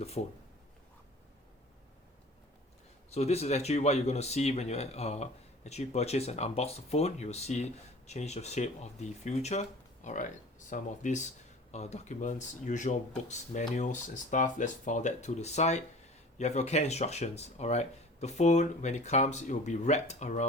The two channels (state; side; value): normal; both; correlation 0.42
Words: phone. So this is actually what you're going to see when you actually purchase and unbox the phone. You'll see change of shape of the future. Alright, some of these documents, usual books, manuals and stuff. Let's file that to the side. You have your care instructions. Alright, the phone, when it comes, it will be wrapped